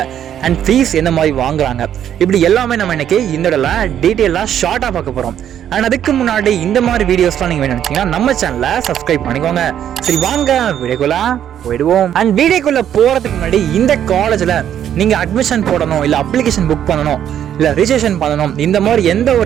அண்ட் ஃபீஸ் எந்த மாதிரி வாங்குறாங்க, இப்படி எல்லாமே நம்ம இன்னைக்கு இந்த இடத்துல டீட்டெயிலாக ஷார்ட்டா பார்க்க போறோம். அண்ட் அதுக்கு முன்னாடி இந்த மாதிரி வீடியோஸ்லாம் நீங்க வேணும் நினைச்சீங்கன்னா நம்ம சேனலை சப்ஸ்கிரைப் பண்ணிக்கோங்க. சரி, வாங்க வீடியோக்குள்ள போயிடுவோம். அண்ட் வீடியோக்குள்ள போறதுக்கு முன்னாடி இந்த காலேஜ்ல நீங்க அட்மிஷன் போடணும், இல்ல அப்ளிகேஷன் புக் பண்ணணும், இல்ல ரிஜிஸ்ட்ரேஷன் பண்ணணும், இந்த மாதிரி எந்த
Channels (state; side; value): quieter; left; 10.1 dB